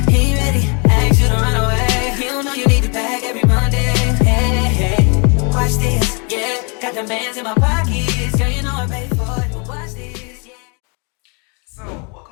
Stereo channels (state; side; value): quieter; right; 34.5 dB